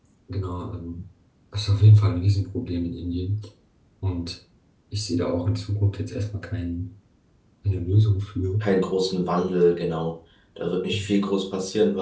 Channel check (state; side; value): identical; both; correlation 1.00